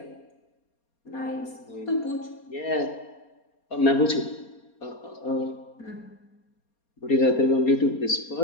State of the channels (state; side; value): late; right; 4.3 ms